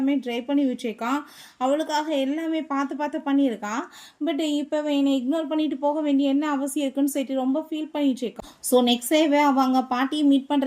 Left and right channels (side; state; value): both; identical; correlation 1.00